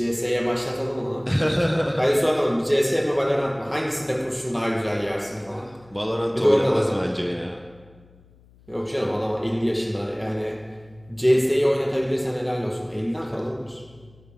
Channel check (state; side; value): noise; left; hum, 27 dB below the sound